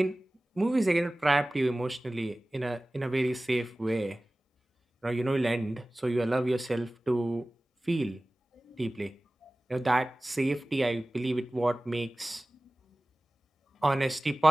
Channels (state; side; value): normal; both; correlation 0.98